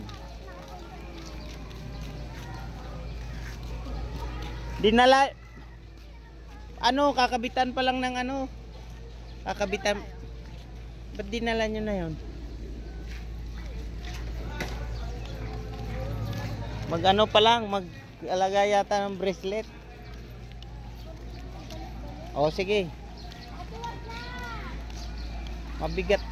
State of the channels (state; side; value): identical; both; correlation 1.00